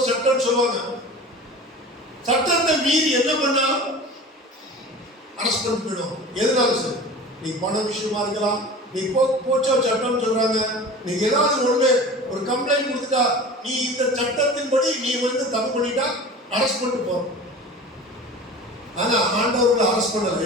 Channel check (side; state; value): both; normal; correlation 0.36